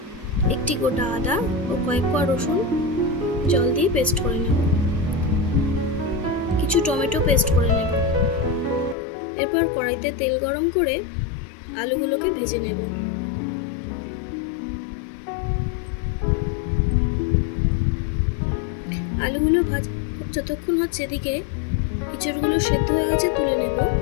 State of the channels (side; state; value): right; drops out; at 9.0 s